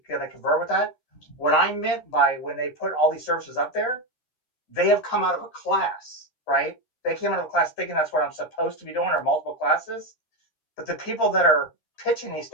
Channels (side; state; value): right; late; 13 ms